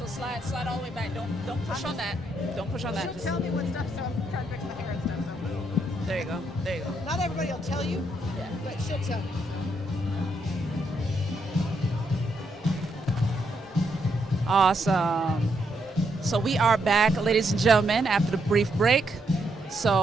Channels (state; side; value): normal; both; correlation 0.77